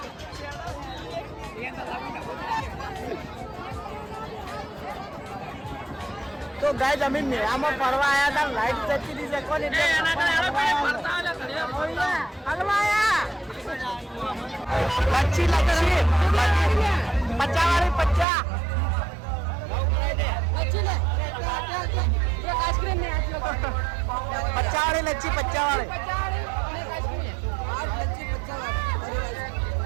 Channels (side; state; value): left; drops out; at 18.2 s